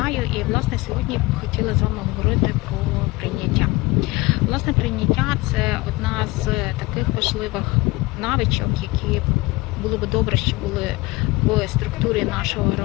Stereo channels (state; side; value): quieter; right; 21.8 dB